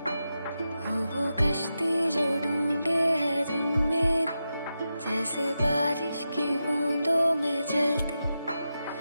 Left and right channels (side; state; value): both; inverted; correlation -0.89